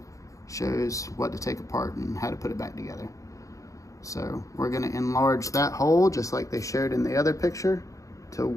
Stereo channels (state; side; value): late; right; 0.16 ms